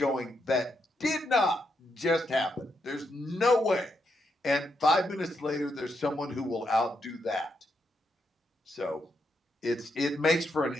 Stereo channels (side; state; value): both; normal; correlation 0.81